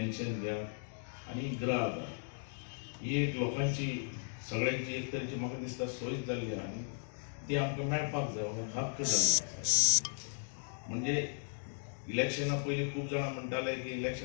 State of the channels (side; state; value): right; silent; digital silence